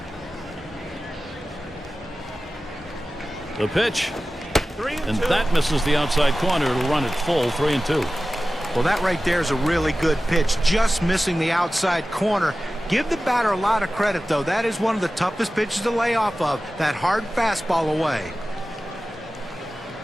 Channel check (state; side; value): normal; both; correlation 0.95